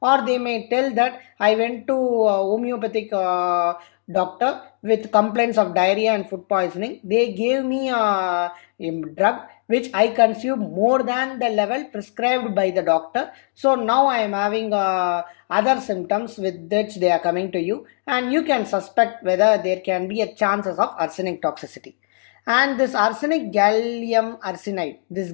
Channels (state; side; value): silent; right; digital silence